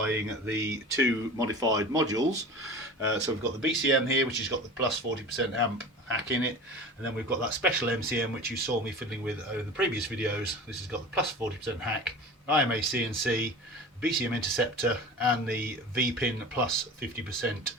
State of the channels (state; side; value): normal; both; correlation 0.35